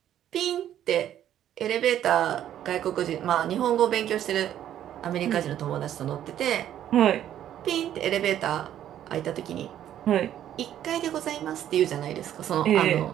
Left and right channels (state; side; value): quieter; left; 11.1 dB